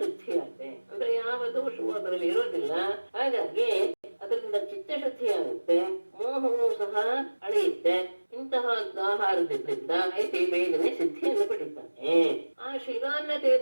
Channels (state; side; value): inverted; both; correlation -1.00